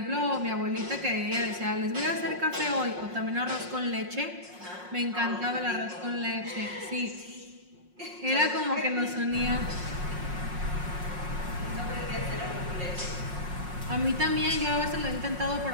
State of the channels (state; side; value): late; left; 5.5 ms